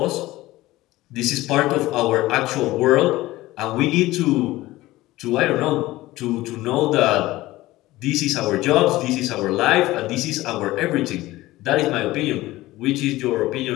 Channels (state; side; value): quieter; right; 17.7 dB